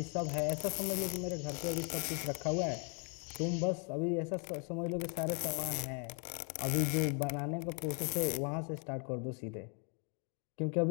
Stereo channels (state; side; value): quieter; right; 38.9 dB